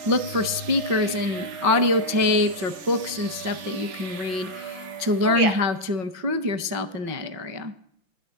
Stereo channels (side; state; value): left; late; 5.4 ms